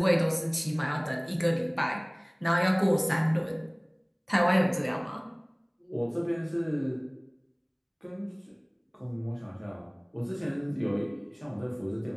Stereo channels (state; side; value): identical; both; correlation 1.00